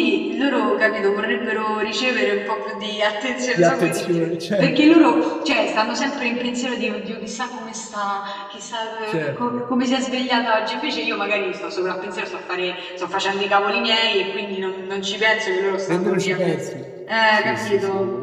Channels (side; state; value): both; identical; correlation 1.00